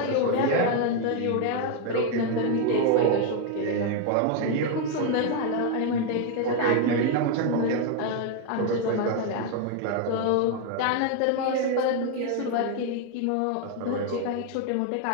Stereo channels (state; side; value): different; both; correlation 0.01